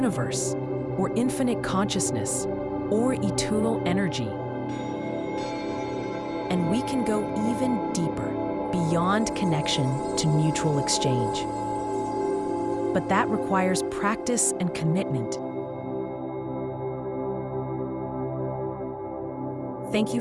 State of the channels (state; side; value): identical; both; correlation 1.00